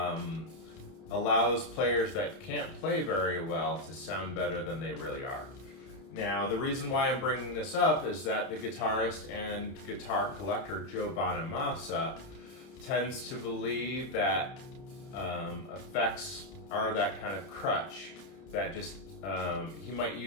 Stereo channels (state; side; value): late; right; 30 ms